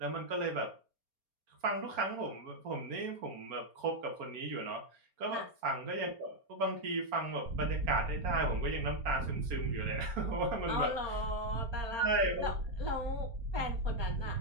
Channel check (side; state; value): left; late; 4.3 ms